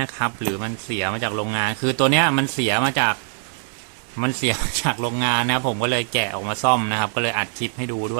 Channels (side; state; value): left; silent; 64 dB below the other